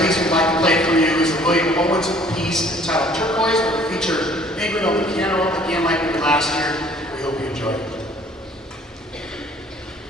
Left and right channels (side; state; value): both; normal; correlation 0.56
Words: we'd like to play for you is the William Owens piece entitled Turquoise, where we feature Ingrid on the piano, again like we did last year. We hope you enjoy it.